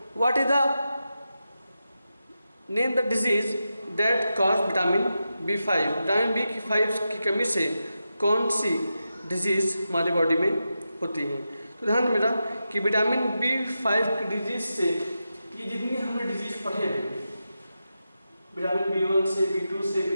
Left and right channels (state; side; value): inverted; both; correlation -0.89